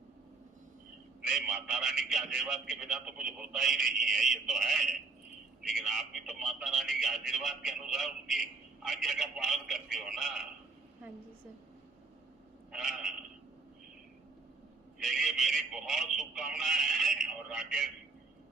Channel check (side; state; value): left; quieter; 3.9 dB